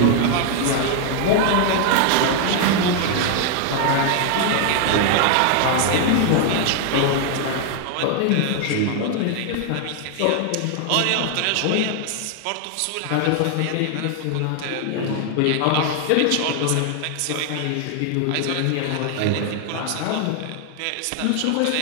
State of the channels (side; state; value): both; different; correlation 0.00